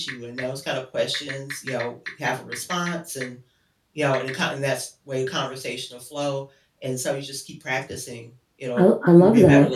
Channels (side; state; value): both; identical; correlation 1.00